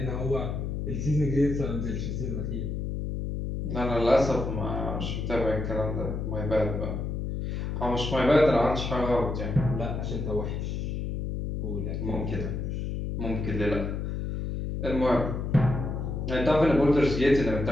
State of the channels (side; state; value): left; noise; hum, 3 dB below the sound